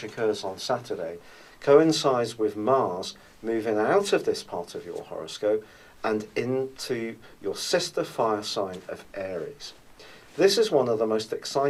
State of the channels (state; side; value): identical; both; correlation 1.00